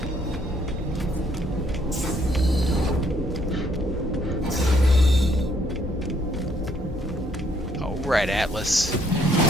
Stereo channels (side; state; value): both; normal; correlation 0.68